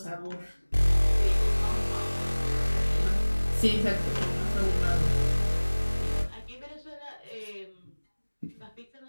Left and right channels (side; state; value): both; inverted; correlation -1.00